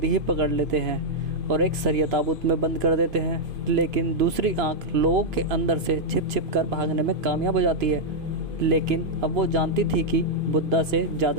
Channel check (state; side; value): late; left; 2.5 ms